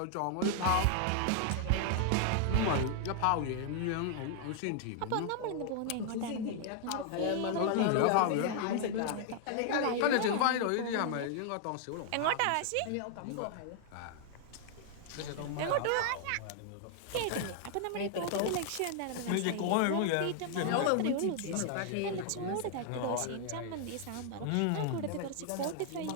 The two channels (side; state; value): both; different; correlation 0.00